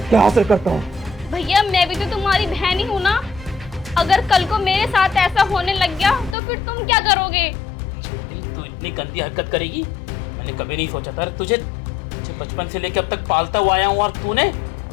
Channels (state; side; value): drops out; right; at 6.4 s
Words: क्या असर करता हूँ। भैया मैं भी तो तुम्हारी बहन ही हूँ ना, अगर कल को मेरे साथ ऐसा होने लग गया तो फिर तुम क्या करोगे? तू इतनी गंदी हरकत करेगी मैंने कभी नहीं सोचा था। तुझे बचपन से लेकर अब तक पालता हुआ आया हूँ और तूने